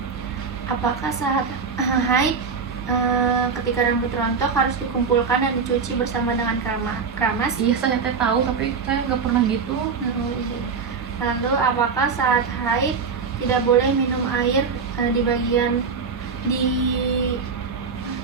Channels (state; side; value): quieter; left; 5.5 dB